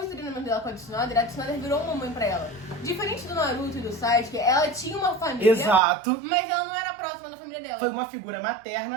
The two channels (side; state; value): left; drops out; at 5.8 s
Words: do treinamento dela com a Tsunade virou uma mãe pra ela. Diferente do Naruto e do Sasuke, ela tinha uma família. Exato. Mas ela não era próxima da família dela. Foi uma figura